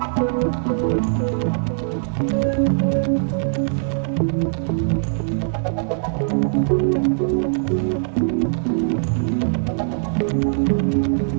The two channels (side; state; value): left; silent; digital silence